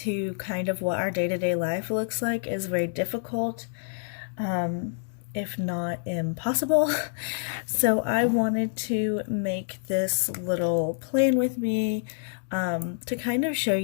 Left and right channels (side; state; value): right; silent; digital silence